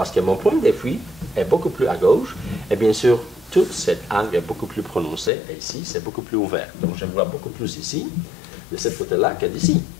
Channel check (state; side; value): drops out; right; at 5.3 s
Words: que mon point de fuite est beaucoup plus à gauche, et bien sûr, tout cet angle est beaucoup plus prononcé, et ici, c'est beaucoup plus ouvert. Donc, je vois beaucoup plus ici, de ce côté-là, que d'ici.